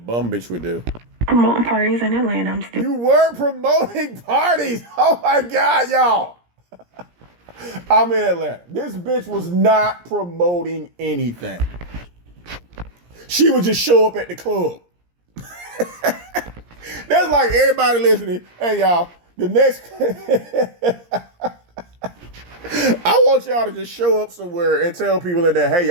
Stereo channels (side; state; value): left; late; 17 ms